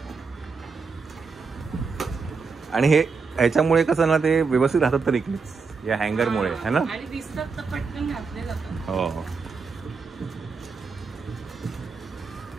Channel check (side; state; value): left; quieter; 4.9 dB